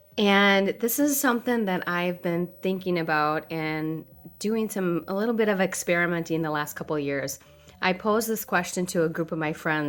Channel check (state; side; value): identical; both; correlation 1.00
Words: And this is something that I've been thinking about and doing a little bit of experimenting the last couple of years. I posed this question to a group of my